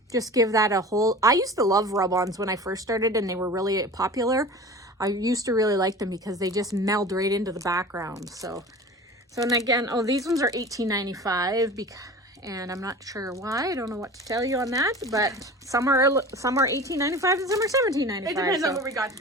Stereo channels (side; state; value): both; normal; correlation 0.37